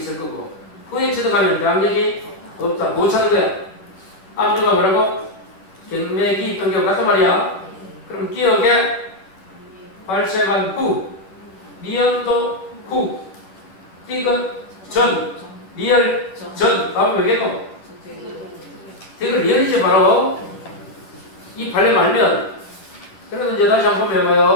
거고 후에 취득하면 대항력이 없다. 못 찾는 거야. 앞뒤가 뭐라고? 경매 기입 등기하고 같단 말이야. 그럼 기억에 발생한 후, 미연도 후, 디귿 전, 리얼 전. 다음에 왜겠노? 디귿 리얼이지 바로. 이 발레 말면. 그래도 이제 다시 한번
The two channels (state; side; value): late; right; 11 ms